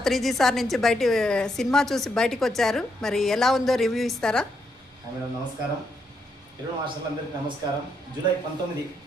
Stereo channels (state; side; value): normal; both; correlation 0.78